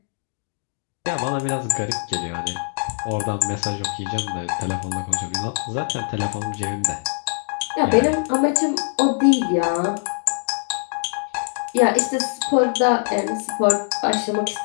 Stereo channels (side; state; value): right; silent; digital silence